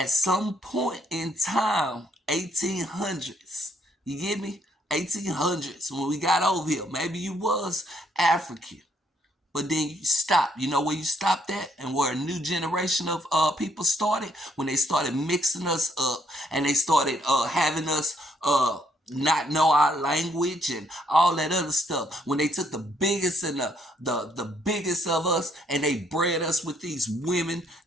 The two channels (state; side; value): normal; both; correlation 0.70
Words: some point in time, 1800s, you get me? 1800s, when we got over here, maybe you was African, but then you stopped. You know where you stopped at and where a new generation of people started? When they started mixing us up and they started having us not know our language and all that other stuff. When they took the biggest and the biggest of us and they bred us with these women